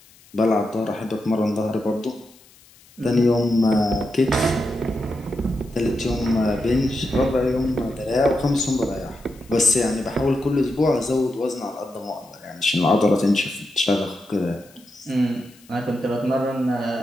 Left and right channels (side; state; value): left; noise; hiss, 27 dB below the sound